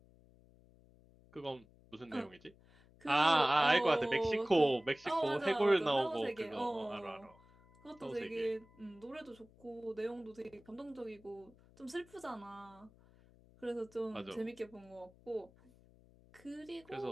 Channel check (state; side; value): noise; left; hum, 26 dB below the sound